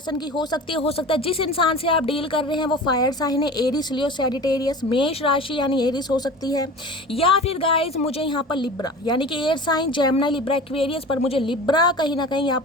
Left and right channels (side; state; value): both; normal; correlation 0.36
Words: की हो सकती है, हो सकता है जिस इंसान से आप डील कर रहे हैं वो फायर साइन है, एरिस, लियो, सैजिटेरियस। मेष राशि यानी एरिस हो सकती है, या फिर गाइज मुझे यहाँ पर लिब्रा यानी कि air sign, Gemini, Libra, Aquarius, पर मुझे लिब्रा कहीं ना कहीं यहाँ